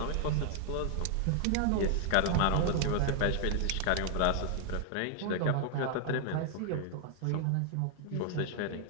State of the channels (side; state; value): both; different; correlation 0.00